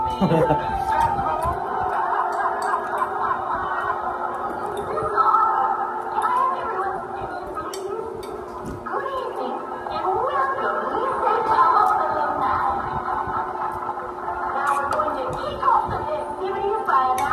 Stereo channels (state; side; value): identical; both; correlation 1.00